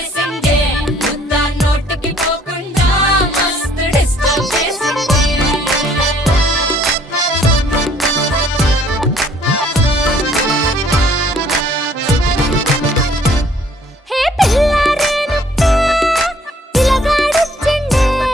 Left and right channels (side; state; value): both; normal; correlation 0.61